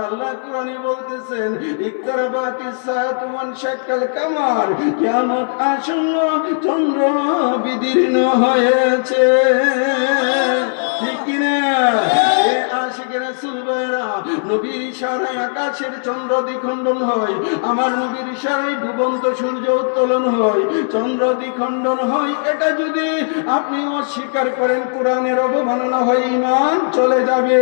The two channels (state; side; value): silent; right; 60 dB below the other